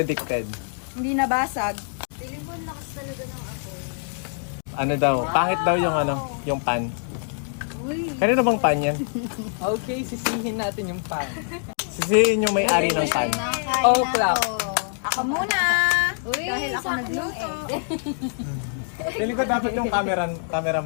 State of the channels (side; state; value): right; silent; digital silence